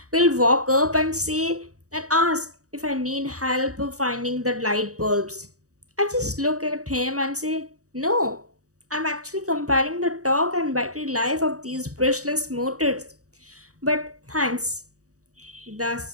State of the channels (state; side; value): late; left; 0.66 ms